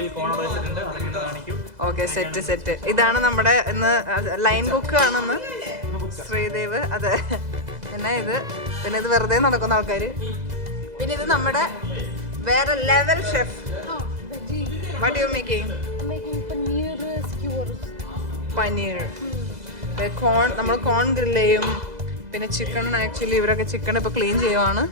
കോൺ വെച്ചിട്ടുണ്ട്, അതൊക്കെ കാണിക്കും. Okay, set. ഇതാണ് നമ്മുടെ ഇന്ന് ലൈൻ കുക്ക് ആണെന്ന് ശ്രീദേവ്. അതെ, പിന്നെ ഇത് വെറുതെ നടക്കുന്ന ആൾക്കാര്. പിന്നെ ഇത് നമ്മുടെ വേറെ level chef. What you making? I'm making paneer skewers. Paneer, corn, നമ്മൾ കോൺ ഗ്രില്ല് ചെയ്യും. പിന്നെ ചിക്കൻ, ആക്ച്വലി ഇവരൊക്കെ ചിക്കൻ ഇപ്പോൾ ക്ലീൻ ചെയ്യുവാണ്.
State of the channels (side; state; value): left; late; 2.0 ms